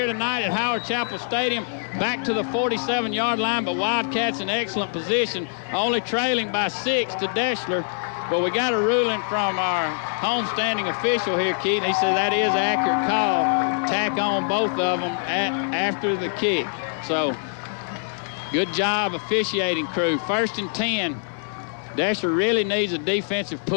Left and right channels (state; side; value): silent; right; 63 dB below the other